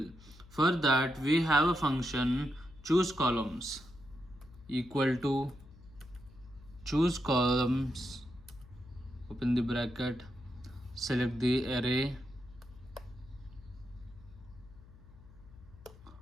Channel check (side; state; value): left; noise; hum, 21 dB below the sound